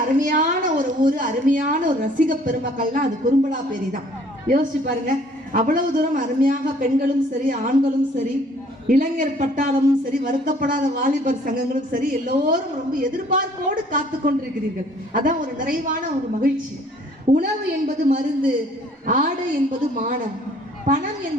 அருமையான ஒரு ஊர், அருமையான ஒரு ரசிக பெருமக்கள்னா அது குறும்பலாப்பேரி தான். யோசிச்சு பாருங்க, அவ்வளவு தூரம் அருமையாக பெண்களும் சரி, ஆண்களும் சரி, இளைஞர் பட்டாளமும் சரி, வருத்தப்படாத வாலிபர் சங்கங்களும் சரி, எல்லோரும் ரொம்ப எதிர்பார்ப்போடு காத்து கொண்டிருக்கிறீர்கள். அதான் ஒரு நிறைவான ஒரு மகிழ்ச்சி. உணவு என்பது மருந்து, ஆடை என்பது மானம், பணம்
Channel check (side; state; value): both; normal; correlation 0.57